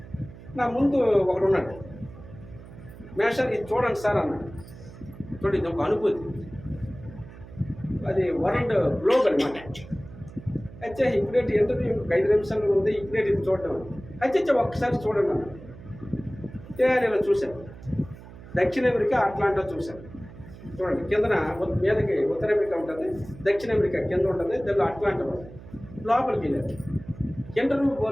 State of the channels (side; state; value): right; noise; hum, 17 dB below the sound